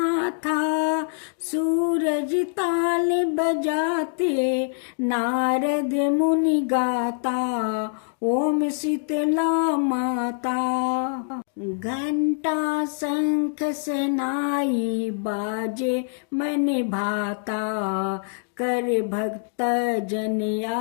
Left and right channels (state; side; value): silent; right; digital silence